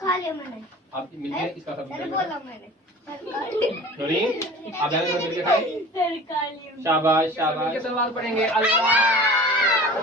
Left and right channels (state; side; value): normal; both; correlation 0.41